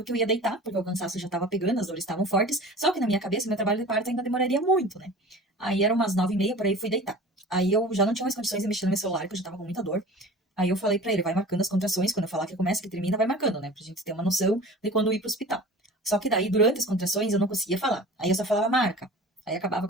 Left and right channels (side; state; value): both; normal; correlation 0.40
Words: que eu ia deitar, porque o cansaço já tava pegando, as dores estavam fortes. Só que na minha cabeça, meu trabalho de parto ainda demoraria muito, né? Aí, eram umas 9h30, por aí, fui deitar. Aí, eu já não tinha mais condições de mexer no meu celular, que eu já tava com muita dor. Aí, eu falei pra ele, vai marcando as contrações, quando eu falar que começa, que termina, vai marcando, né? Pra gente ter uma noção de quando ir pro hospital. Só que daí, durante as contrações, eu não conseguia falar. Aí, eu só falava marca. Aí, acabava a